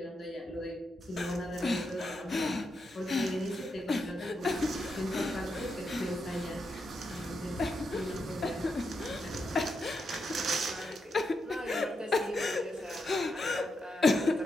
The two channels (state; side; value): normal; both; correlation 0.84